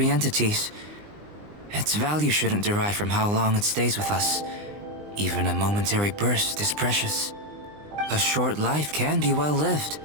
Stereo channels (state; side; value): late; left; 20 ms